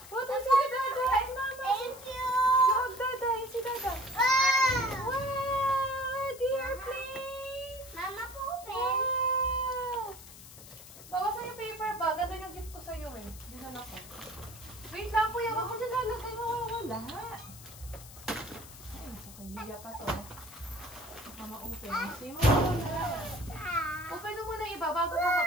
What is si Dada and Mama? thank you. Hug Dada and si Dada. Wow. Wow! The airplane! Mama, open. Wow! Bawasan yung paper bag. Ano yung gift ko sa'yo eh? Dinala ko. Wait lang, Kuya. Wag mo dyan lalagay. Mawawala. Ay, nasa kay Lia pa to. Mama, open. See mo? Open mo muna iba bago ko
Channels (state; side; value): noise; left; hiss, 17 dB below the sound